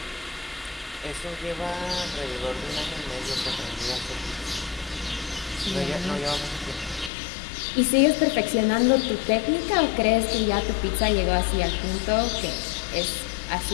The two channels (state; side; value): drops out; right; at 7.1 s